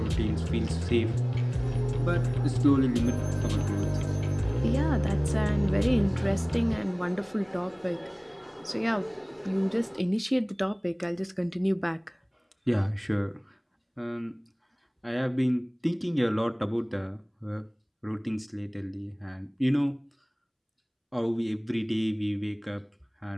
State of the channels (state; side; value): identical; both; correlation 1.00